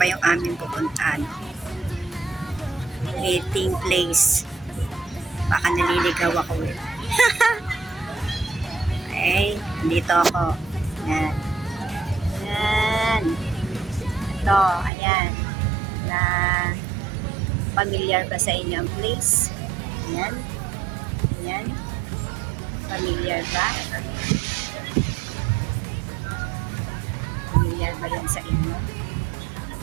pa yung aming pupuntahan. Meeting place. Baka naliligaw ako Okay, dito ako. Yan. Yan. Ito, ayan. Na familiar ba sa inyo ang place? Ayan. Ayan. Familiar ba? Familiar ba yan sa inyo?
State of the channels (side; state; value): left; drops out; at 14.9 s